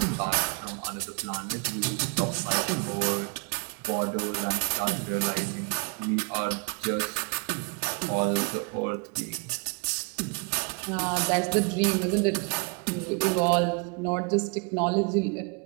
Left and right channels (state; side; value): quieter; left; 34.5 dB